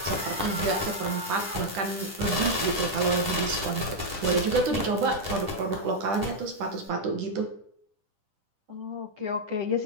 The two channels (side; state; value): left; late; 10 ms